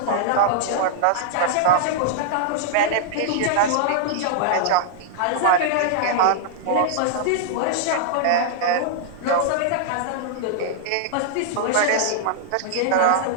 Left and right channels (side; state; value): both; different; correlation -0.01